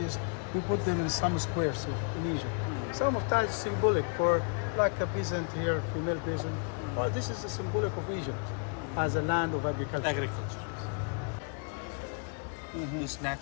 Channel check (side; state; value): right; quieter; 39.8 dB